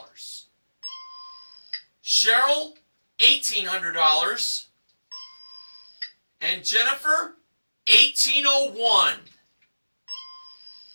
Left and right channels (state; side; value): inverted; both; correlation -1.00